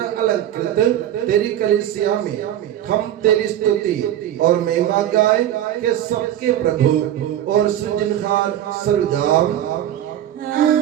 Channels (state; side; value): quieter; left; 11.7 dB